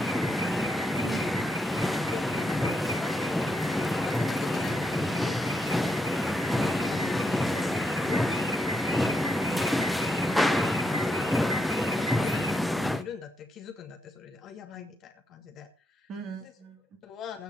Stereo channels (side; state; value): both; normal; correlation 0.82